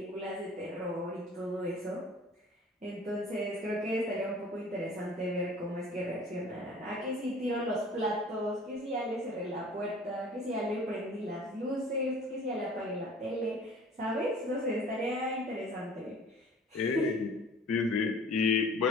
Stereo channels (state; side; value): normal; both; correlation 0.47